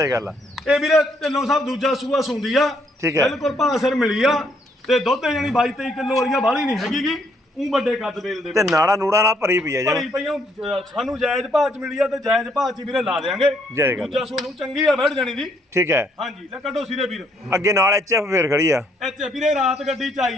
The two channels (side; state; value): both; normal; correlation 0.70